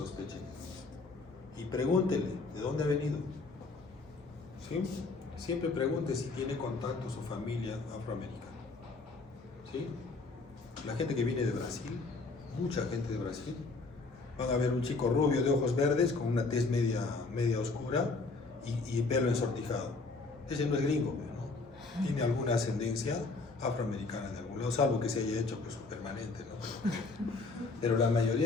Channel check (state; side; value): quieter; right; 3.8 dB